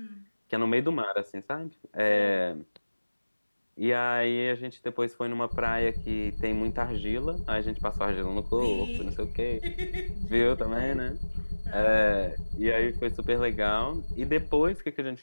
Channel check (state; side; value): inverted; both; correlation -1.00